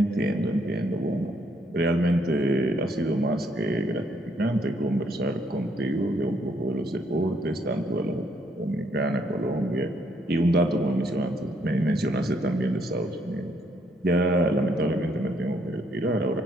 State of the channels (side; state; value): both; normal; correlation 0.70